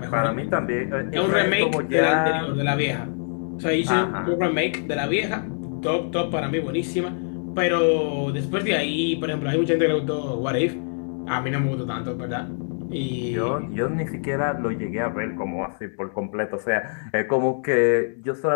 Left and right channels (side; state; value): right; silent; digital silence